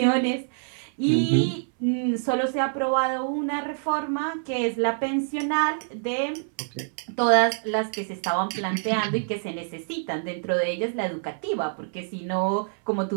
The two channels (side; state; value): left; silent; 61 dB below the other